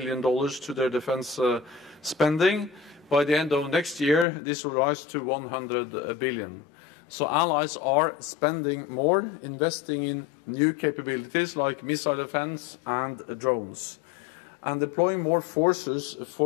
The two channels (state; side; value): drops out; right; at 4.2 s